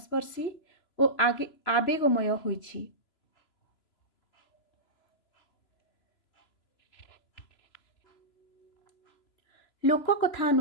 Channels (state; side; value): late; right; 3.0 ms